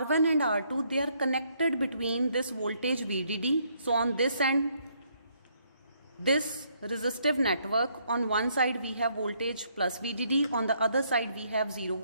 and R2, they are connected between this voltage VDD. So on this end, this resistive network, on one side we have voltage plus VDD, on the other side we have 0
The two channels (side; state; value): both; inverted; correlation -0.70